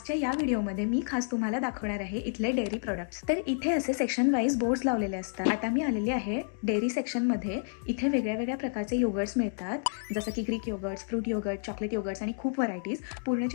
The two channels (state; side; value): silent; right; digital silence